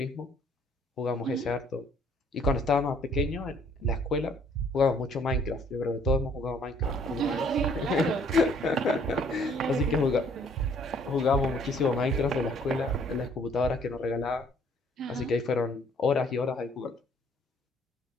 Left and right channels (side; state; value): both; normal; correlation 0.61